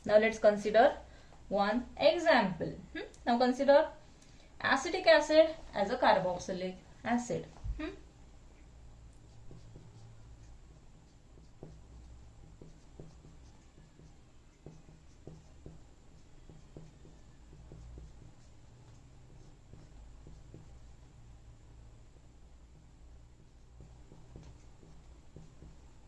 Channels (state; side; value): identical; both; correlation 1.00